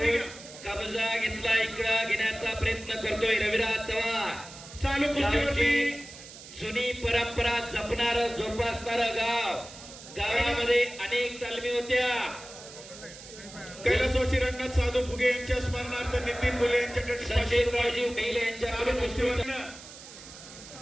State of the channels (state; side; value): noise; right; hiss, 16 dB below the sound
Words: कब्जा घेतला, इकडं घेण्याचा प्रयत्न करतोय रविराज चव्हाण। चालू कुस्तीवरती जुनी परंपरा जपणार जोपासणार गाव, गावामध्ये अनेक तालमी होत्या। कैलासवासी रंगनाथ साधू फुगे यांच्या स्मरणार्थ नितीन गोले यांच्याकडे सचिनरावजी मेले यांच्या कुस्तीवरनं